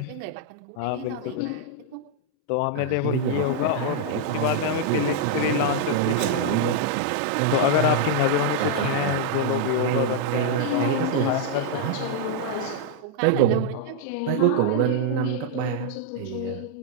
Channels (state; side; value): different; both; correlation -0.01